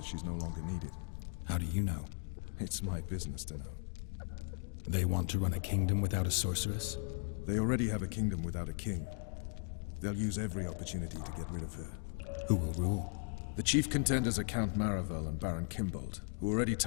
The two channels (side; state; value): right; silent; 53 dB below the other